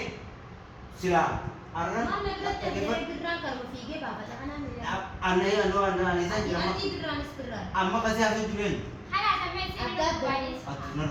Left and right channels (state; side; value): identical; both; correlation 1.00